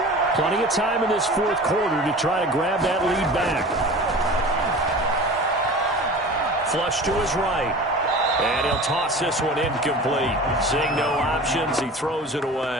plenty of time in this 4th quarter to try to grab that lead back. Flush to his right. And he'll toss this one incomplete. Seeing no options, he throws it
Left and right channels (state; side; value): normal; both; correlation 0.38